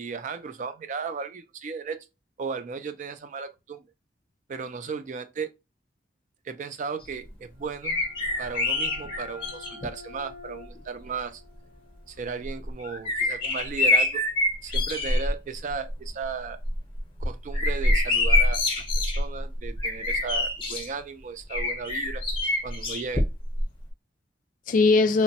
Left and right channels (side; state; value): both; normal; correlation 0.33